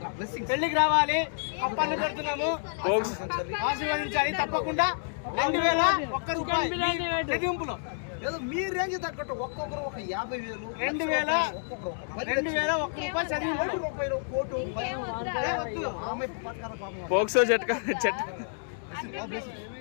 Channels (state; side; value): silent; right; digital silence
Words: పెళ్లికి రావాలి, అప్పలు పెడుతున్నాము, ఆశీర్వదించాలి. తప్పకుండా 2000 రూపాయి చదివింపులో ఏదో మీ రేంజ్ తగ్గట్టు ఒక్కొక్కరు ఒక 50,000, 2000 రూపాయలు కోటు పోక్సో